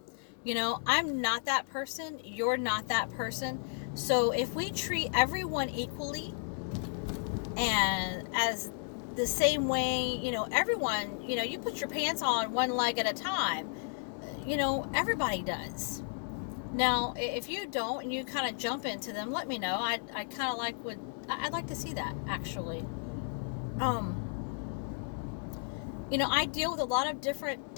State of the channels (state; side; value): silent; right; 56 dB below the other